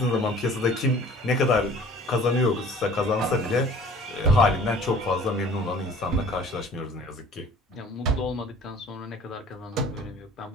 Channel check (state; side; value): normal; both; correlation 0.49